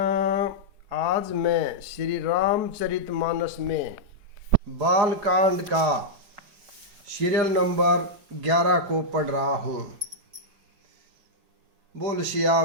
आज मैं श्री रामचरितमानस में बालकांड का सीरियल नंबर 11 को पढ़ रहा हूँ। बोल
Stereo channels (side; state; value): left; late; 4.9 ms